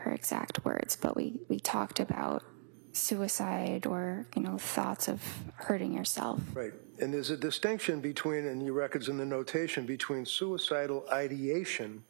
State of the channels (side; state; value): left; silent; digital silence